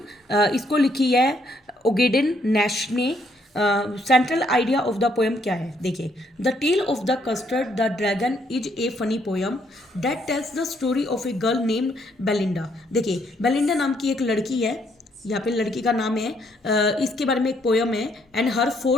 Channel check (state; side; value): normal; both; correlation 0.70